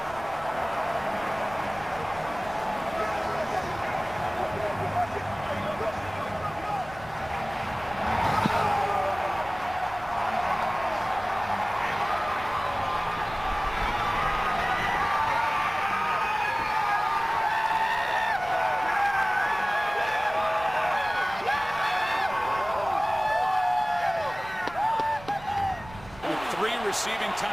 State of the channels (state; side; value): noise; right; rumble, 18 dB below the sound